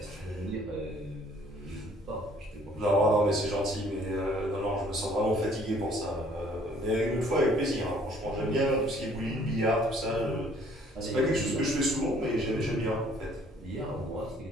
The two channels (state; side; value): normal; both; correlation 0.59